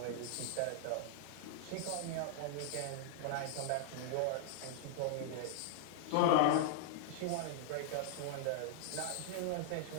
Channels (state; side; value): different; both; correlation -0.01